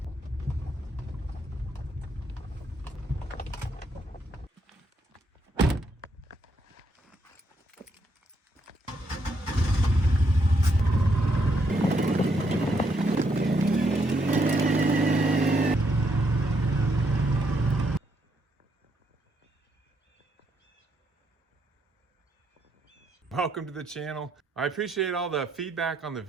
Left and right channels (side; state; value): both; normal; correlation 0.76